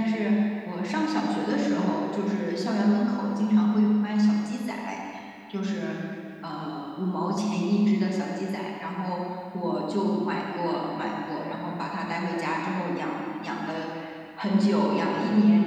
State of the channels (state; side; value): identical; both; correlation 1.00